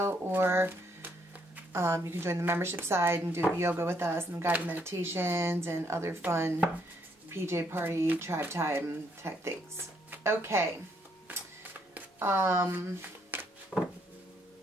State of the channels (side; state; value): both; normal; correlation 0.72